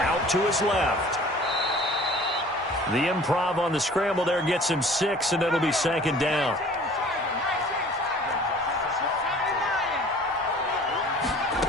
to his left. The improv on the scramble there gets him 6, and it'll be 2nd down.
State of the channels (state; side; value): normal; both; correlation 0.48